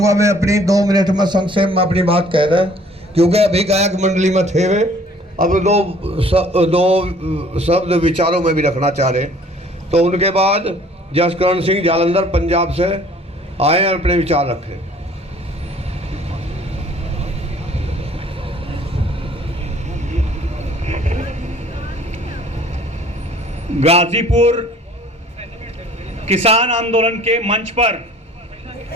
मैं अपनी 2 मिनट में संक्षेप में अपनी बात कह रहे क्योंकि अभी गायक मंडली में थे वे अब दो शब्द विचारों में भी रखना चाह रहे तो उनके बाद जसकरण सिंह जालंधर पंजाब से आए और अपने विचार रखे। गाजीपुर किसान आंदोलन के मंच पर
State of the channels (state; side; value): normal; both; correlation 0.55